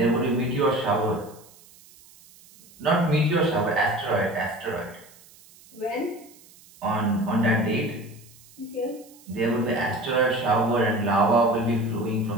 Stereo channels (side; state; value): right; noise; hiss, 25 dB below the sound